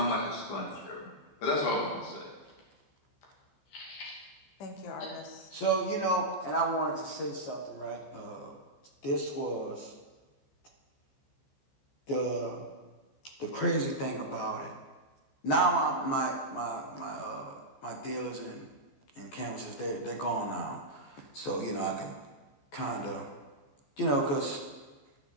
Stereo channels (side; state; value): right; late; 14 ms